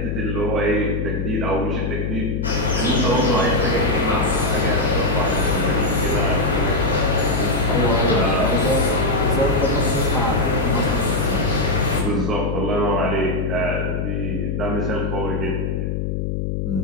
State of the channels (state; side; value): noise; left; hum, 1 dB below the sound